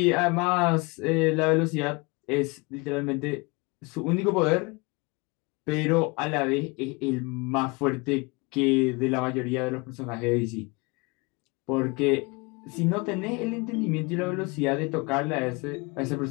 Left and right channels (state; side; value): quieter; right; 27.4 dB